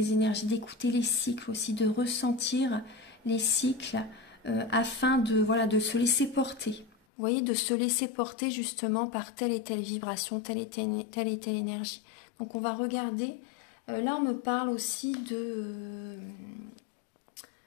énergies, d'écouter les cycles aussi, de ressentir les cycles afin de se laisser porter. Vous voyez, de se laisser porter justement par telle et telle vibration, telle et telle énergie. Donc on va regarder, là on me parle aussi de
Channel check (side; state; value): right; drops out; at 7.0 s